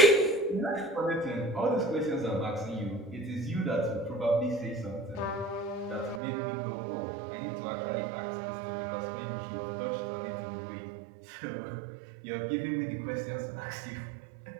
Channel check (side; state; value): left; drops out; at 6.2 s